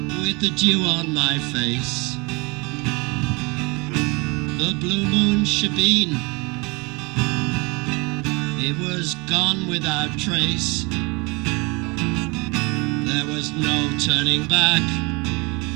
with the dew on my face. The blue moon Shebeen, it was gone without trace. There was no turning back,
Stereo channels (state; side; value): quieter; left; 27.8 dB